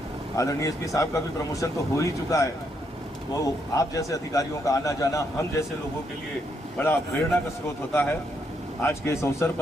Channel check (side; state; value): both; normal; correlation 0.76